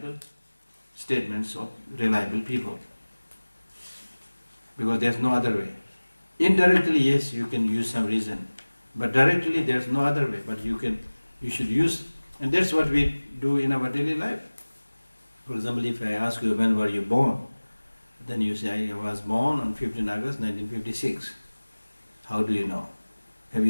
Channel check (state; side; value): inverted; both; correlation -1.00